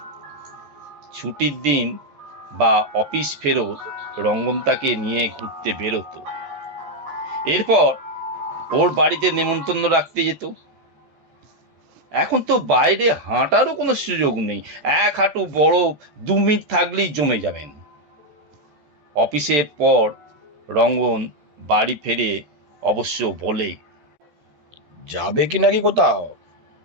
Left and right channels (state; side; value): late; left; 14 ms